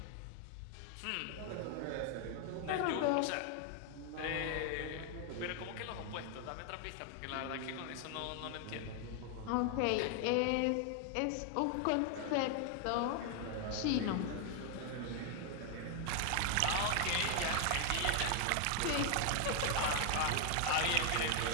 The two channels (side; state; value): both; different; correlation 0.00